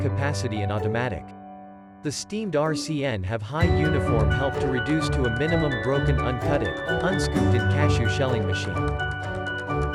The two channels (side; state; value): both; identical; correlation 1.00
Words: and automatic. The steamed RCN have high uniform help to reduce to a minimum broken uncutted, unscooped in cashew shelling machine.